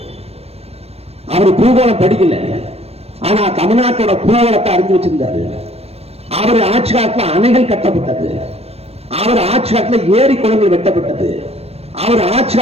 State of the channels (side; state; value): left; late; 0.29 ms